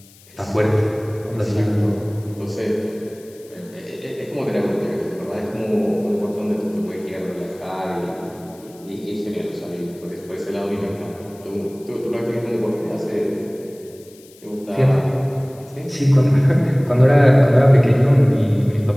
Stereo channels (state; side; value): noise; left; hiss, 25 dB below the sound